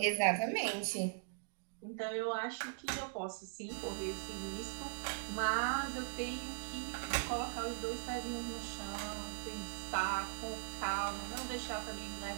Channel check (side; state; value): left; silent; digital silence